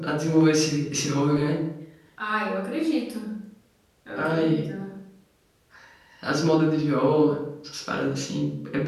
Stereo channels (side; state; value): both; identical; correlation 1.00